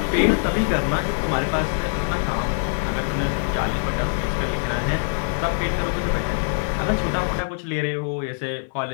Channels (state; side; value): silent; right; digital silence